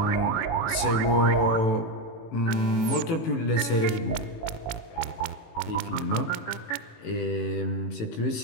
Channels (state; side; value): late; right; 18 ms